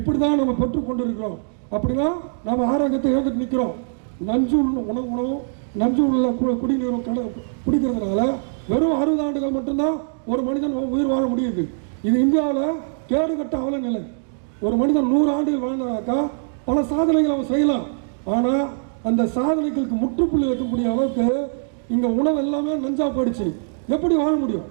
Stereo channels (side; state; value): left; silent; digital silence